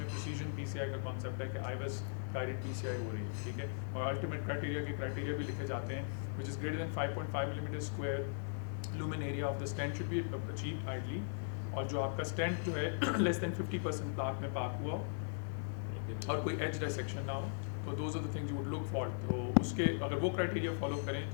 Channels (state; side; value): silent; right; 52 dB below the other